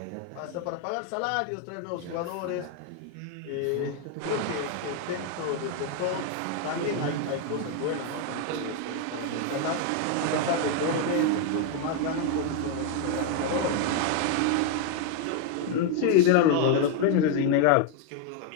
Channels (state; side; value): different; both; correlation 0.01